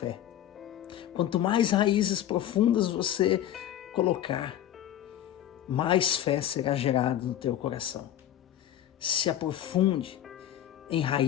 Quanto mais raízes profundas você colocar, mais fé será gerada no teu coração. Se aprofunde em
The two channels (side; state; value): right; quieter; 11.6 dB